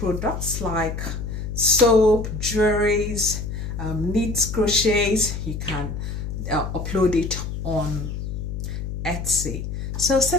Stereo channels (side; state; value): left; noise; hum, 5 dB below the sound